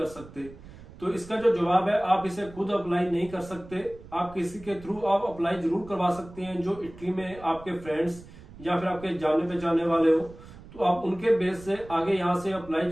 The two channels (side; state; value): right; noise; rumble, 18 dB below the sound